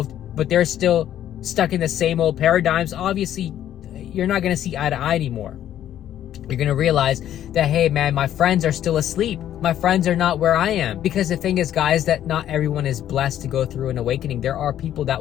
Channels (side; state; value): right; quieter; 11.3 dB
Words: but they're still stuck in the same old paradigms. Obviously, you're not going to see eye to eye anymore. You're going to realize that, hey, man, my friends are still asleep. My friends are not where I am. Because the thing is, guys, that not everyone is blessed to go through an awakening. There are people